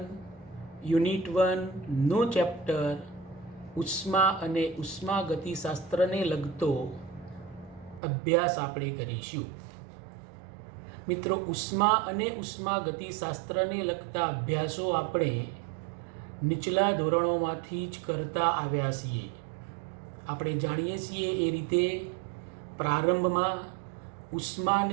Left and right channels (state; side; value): drops out; left; at 8.0 s